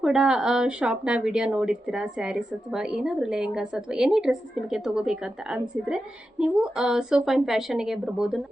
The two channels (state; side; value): normal; both; correlation 0.90